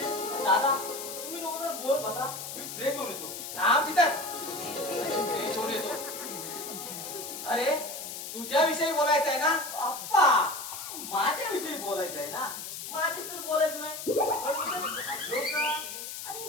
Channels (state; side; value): noise; left; hiss, 8 dB below the sound